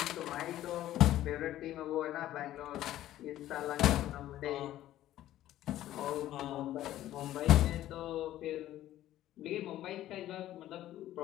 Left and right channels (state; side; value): quieter; right; 13.6 dB